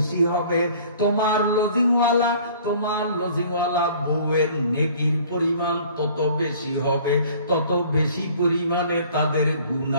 হবে তোমার লজিংওয়ালা বউয়ের নেকির পরিমাণ তত বেশি হবে, তত বেশি পরিমাণে তাদের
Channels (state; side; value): inverted; both; correlation -0.51